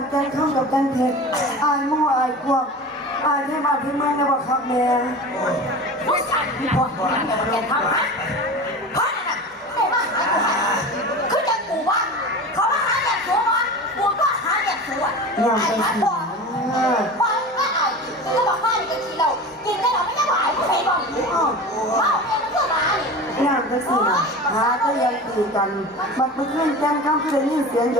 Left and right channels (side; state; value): both; normal; correlation 0.33